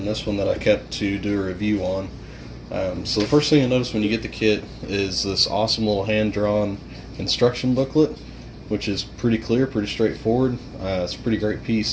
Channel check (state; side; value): identical; both; correlation 1.00